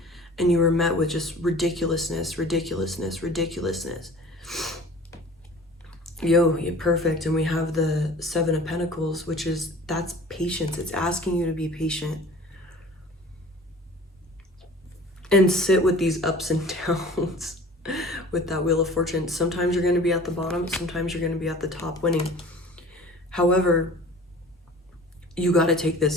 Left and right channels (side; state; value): both; normal; correlation 0.45